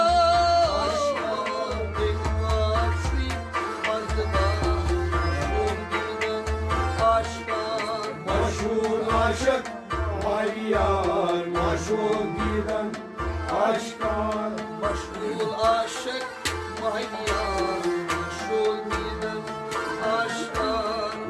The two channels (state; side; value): identical; both; correlation 1.00